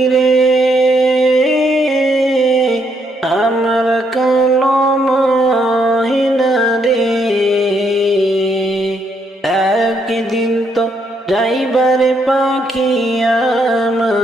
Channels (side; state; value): both; normal; correlation 0.74